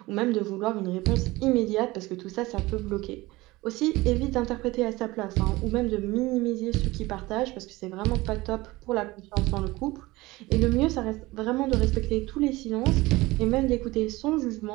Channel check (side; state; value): left; quieter; 20.3 dB